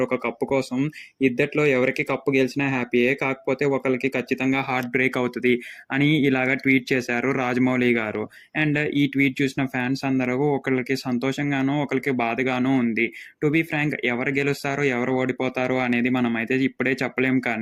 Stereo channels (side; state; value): both; identical; correlation 1.00